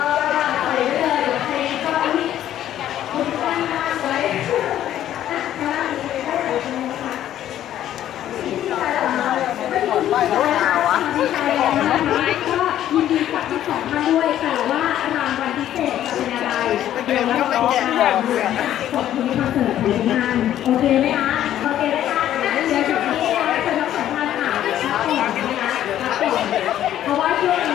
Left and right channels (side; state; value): right; quieter; 11.8 dB